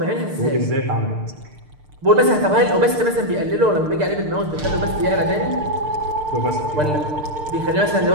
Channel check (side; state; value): left; late; 6.6 ms